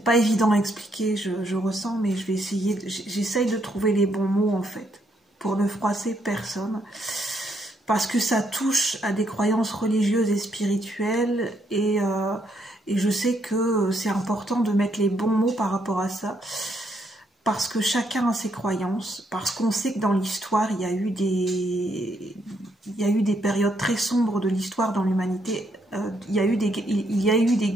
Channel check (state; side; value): normal; both; correlation 0.74